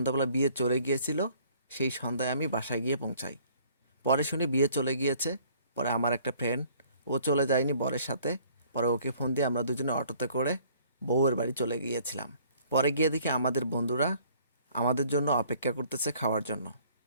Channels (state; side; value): inverted; both; correlation -0.57